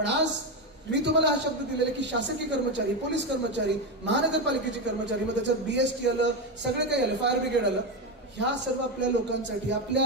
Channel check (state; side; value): normal; both; correlation 0.12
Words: आज मी तुम्हाला हा शब्द दिलेला की शासकीय कर्मचारी, पोलीस कर्मचारी, महानगरपालिकेचे कर्मचारी, मग त्याच्यात BST आलं, सगळे काही आलं, फायर ब्रिगेड आलं, ह्या सर्व आपल्या लोकांसाठी,